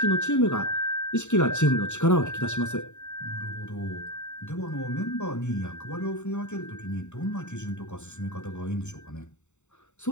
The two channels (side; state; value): right; late; 0.84 ms